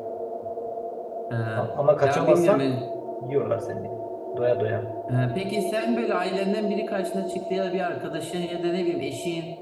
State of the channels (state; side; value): identical; both; correlation 1.00